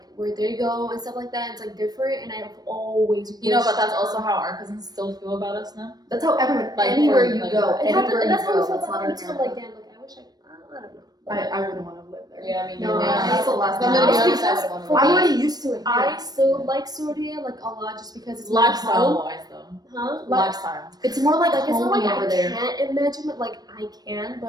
where they go and stuff like that. It's like different, and I've always You know, but wished- that's also how our cousins still feel about us now. That's how everyone, Like, anywhere for, you like, go, It happened, anywhere and you that's how go, I feel that's about not it. It's America. like damn, like I wish I don't know. I wouldn't want to live there. Yeah, I mean, No, yeah. That's the last thing. I'm gonna be I- honest, I because would want for to. I'm me, already used to it. I still like Syria like a lot just because it's my Lifestyle home. wise, though. Huh? Like, Lifestyle. It's more like it's not homey like over I there. can't imagine it. Like I can,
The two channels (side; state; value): left; late; 0.19 ms